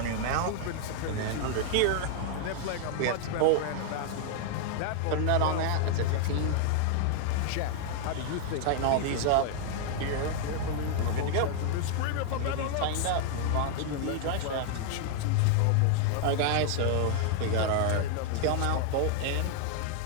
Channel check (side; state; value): both; different; correlation 0.00